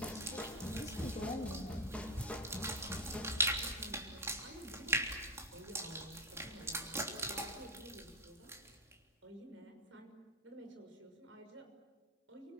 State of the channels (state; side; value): normal; both; correlation 0.05